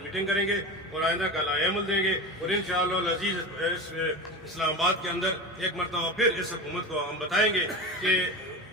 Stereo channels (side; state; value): both; normal; correlation 0.26